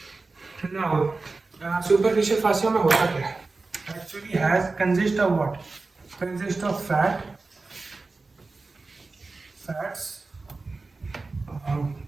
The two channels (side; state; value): left; quieter; 3.7 dB